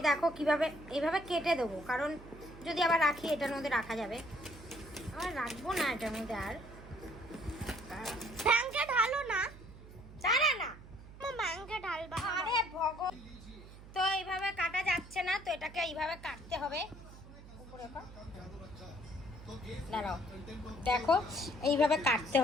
দেখো কিভাবে এইভাবে কেটে দেবো, কারণ যদি আবার রাখি এটার মধ্যে রাখা যাবে, আবার রাখবো না এটার মধ্যে। আর ব্যাংকে ঢালো না, জানা না ব্যাংকে ঢালবা। আরে ভগবান, তো এইভাবে কাটা যাচ্ছে না, তো এটাকে এইভাবে কাটতে হবে। উপরে কর। দাঁড়াও, দেখো এইভাবে কাটতে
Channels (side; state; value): right; noise; hum, 17 dB below the sound